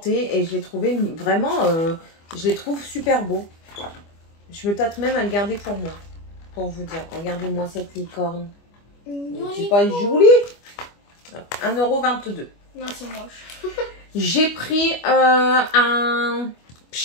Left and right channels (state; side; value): late; right; 25 ms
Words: Et je l'ai trouvé vraiment... je les trouve super beaux. Je me tâte même à le garder pour moi. Pour vous dire. Regardez-moi cette licorne. C'est pas joli. 1,22 €. Non, c'est moche. J'ai pris un...